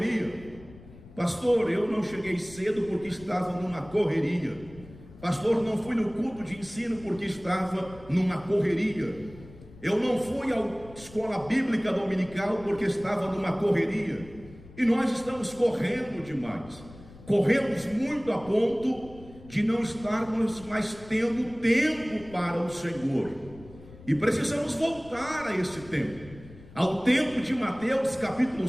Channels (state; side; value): noise; left; rumble, 19 dB below the sound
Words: Pastor, eu não cheguei cedo porque estava numa correria. Pastor, não fui no culto de ensino porque estava numa correria. Eu não fui à escola bíblica dominical porque estava numa correria. E nós estamos correndo demais. Corremos muito a ponto de não estarmos mais tendo tempo para o Senhor. E precisamos voltar a esse tempo, ao tempo de Mateus capítulo